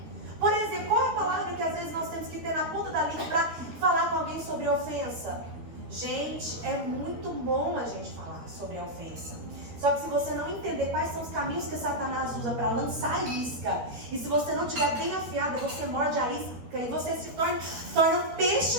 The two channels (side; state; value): left; late; 13 ms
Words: Por exemplo, qual é a palavra que às vezes nós temos que ter na ponta da língua para falar com alguém sobre ofensa? Gente, é muito bom a gente falar sobre a ofensa. Só que se você não entender quais são os caminhos que Satanás usa para lançar a isca, e se você não estiver bem afiada, você morde a isca e você se torna um